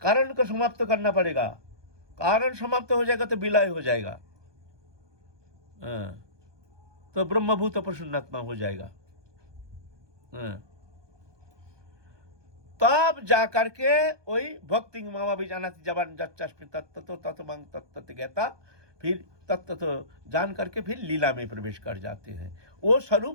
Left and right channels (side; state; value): left; late; 1.2 ms